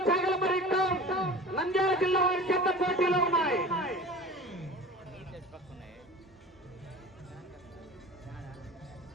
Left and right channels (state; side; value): normal; both; correlation 0.38